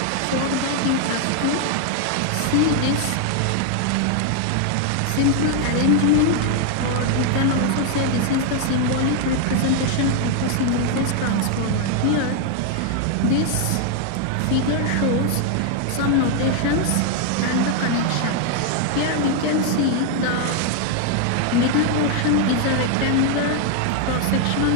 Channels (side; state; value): both; different; correlation 0.00